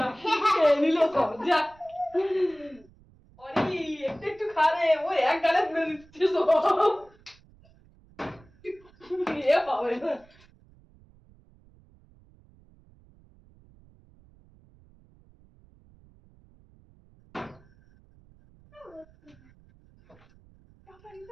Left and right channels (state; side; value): noise; right; rumble, 28 dB below the sound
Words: খেয়ে নিল সব। যা অরি একটু একটু খা রে, ও এক গালে পুড়ে দিচ্ছে সব। এ পাবে না।